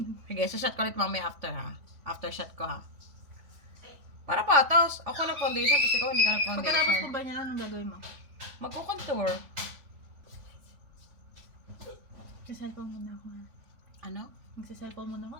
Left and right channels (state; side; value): late; left; 3.5 ms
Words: Sige, shot ko ulit mamaya after ha. After shot ko ha. Para patos. Ako ng foundation, tapos ikaw hindi ka Pagkatapos ko nag-foundation. ba niya, anong gagawin mo? Magko-contour. Magsa-cellphone muna ako. Ha? Ano? Magsa-cellphone muna ako.